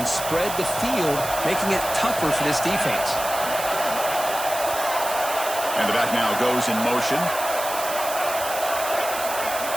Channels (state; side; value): noise; right; hiss, 7 dB below the sound